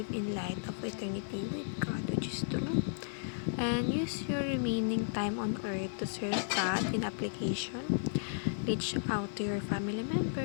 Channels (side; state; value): right; silent; digital silence